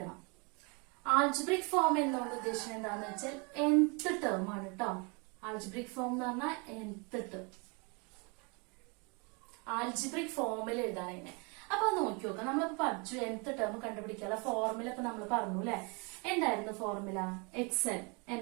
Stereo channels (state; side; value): quieter; left; 31.9 dB